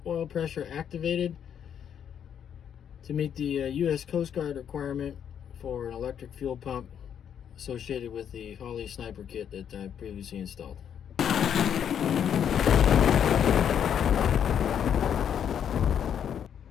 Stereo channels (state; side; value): quieter; right; 8.7 dB